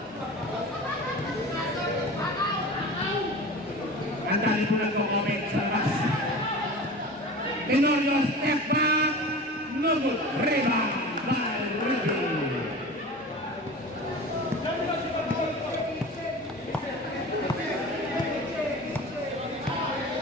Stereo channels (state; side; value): normal; both; correlation 0.35